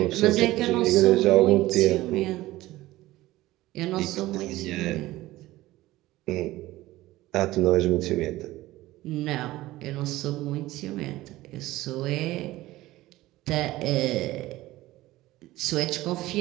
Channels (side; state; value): left; quieter; 17.2 dB